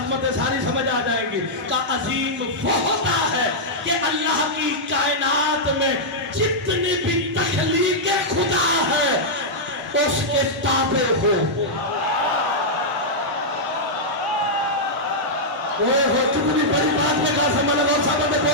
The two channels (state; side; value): normal; both; correlation -0.07